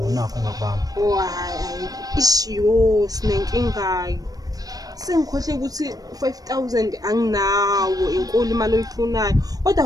ngakubamba Hayi ishiyo sinenkingayo. Sengikhohle ukuthi 5000 anginawo inkulu imali oyifunayo. Kodwa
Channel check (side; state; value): left; late; 0.18 ms